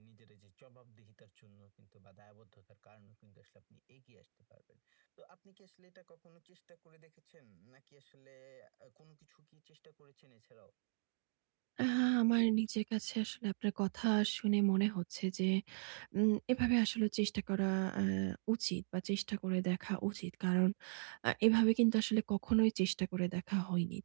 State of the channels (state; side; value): silent; left; digital silence